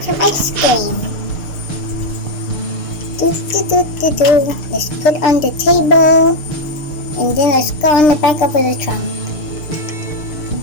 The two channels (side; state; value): right; late; 6.7 ms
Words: some ice cream. Do-do-do-do-do. Let's put on the table. And then let's go on the back of the trunk.